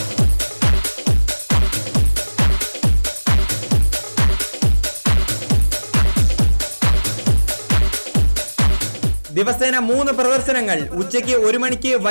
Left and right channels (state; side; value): inverted; both; correlation -1.00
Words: ദിവസേന 3 പ്രദർശനങ്ങൾ. ഉച്ചയ്ക്ക് 1 മണിക്ക്,